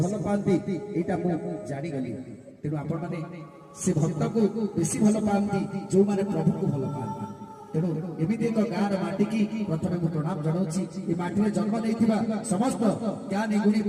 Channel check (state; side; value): identical; both; correlation 1.00